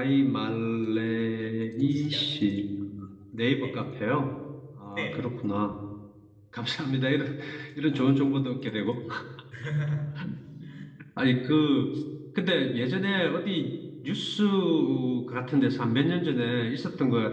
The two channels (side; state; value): both; identical; correlation 1.00